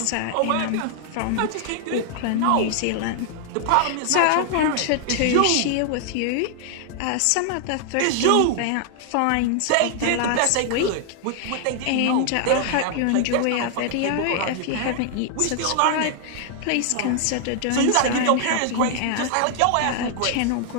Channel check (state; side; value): different; both; correlation 0.00